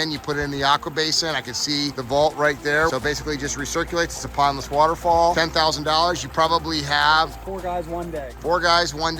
you put it in the aqua basin. I can see the vault right there. So basically just recirculates. It's to Pondless Waterfall. $10,000, you probably have 4 guys one day. 4 guys one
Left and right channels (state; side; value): identical; both; correlation 1.00